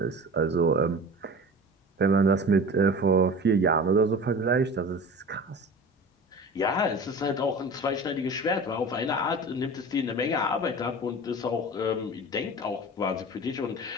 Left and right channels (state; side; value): normal; both; correlation 0.36